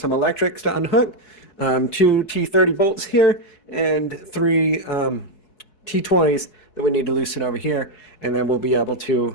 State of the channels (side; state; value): right; late; 4.7 ms